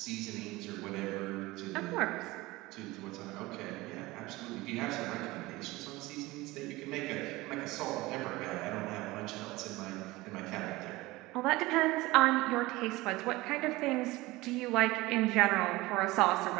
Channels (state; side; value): quieter; left; 20.2 dB